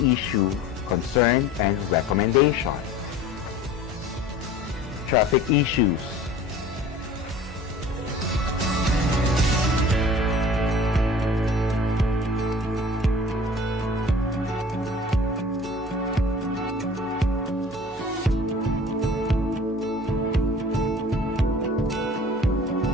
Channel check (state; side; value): normal; both; correlation 0.44